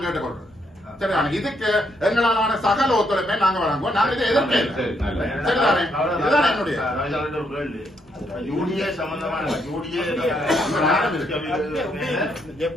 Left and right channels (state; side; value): normal; both; correlation 0.75